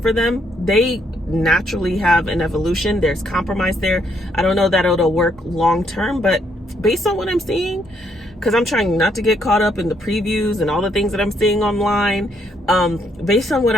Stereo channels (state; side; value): normal; both; correlation 0.72